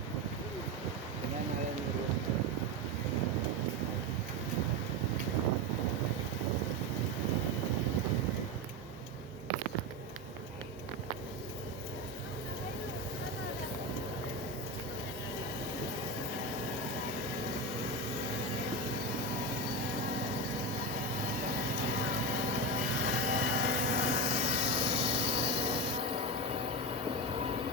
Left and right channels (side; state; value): both; normal; correlation 0.17